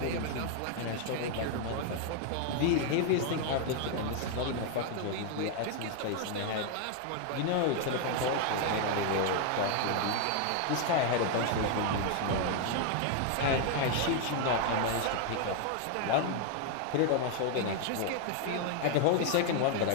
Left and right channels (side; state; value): both; different; correlation 0.00